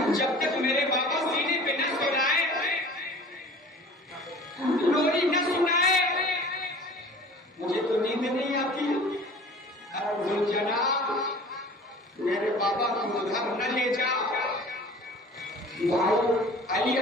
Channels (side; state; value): both; normal; correlation 0.44